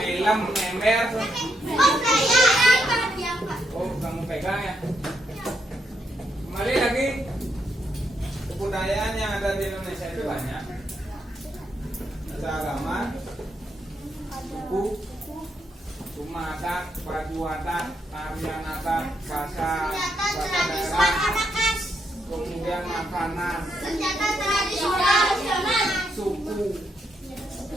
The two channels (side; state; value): both; normal; correlation 0.79